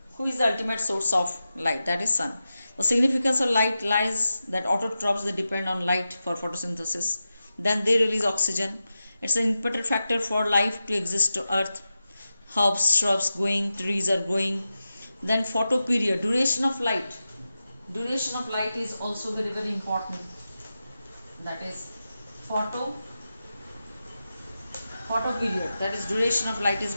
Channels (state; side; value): inverted; both; correlation -0.91